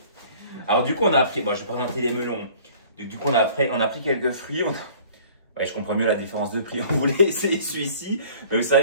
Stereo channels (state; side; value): inverted; both; correlation -0.50